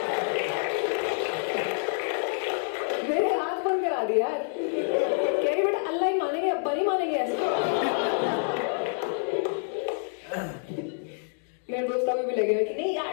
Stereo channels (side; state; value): right; silent; digital silence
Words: मेरे हाथ बंद करा दिया यार। कह रही बेटा अल्लाह ही मानेंगे, अब्बा नहीं मानेंगे ऐसे। मेरे दोस्त अभी भी लगे हुए कि नहीं